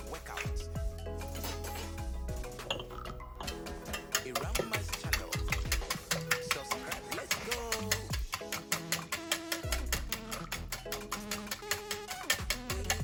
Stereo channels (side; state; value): both; identical; correlation 1.00